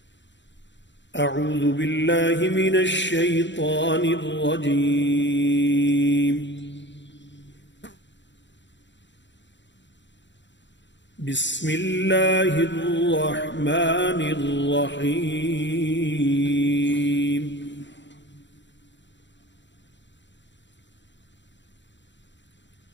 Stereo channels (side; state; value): right; late; 0.53 ms